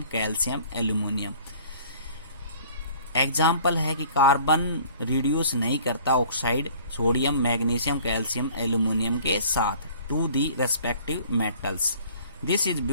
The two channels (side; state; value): both; inverted; correlation -0.51